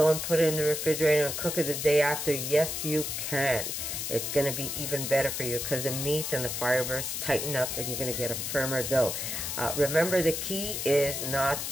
and put it in the refrigerator and cook it the day after? Yes, you can. It's going to be even better for you because the meat and the fibers tighten up and you're going to get a firmer dough. Remember, the key is not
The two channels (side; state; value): left; noise; hiss, 3 dB below the sound